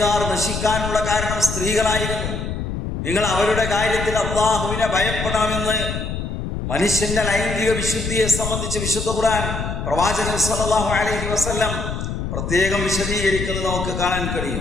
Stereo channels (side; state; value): left; noise; rumble, 4 dB below the sound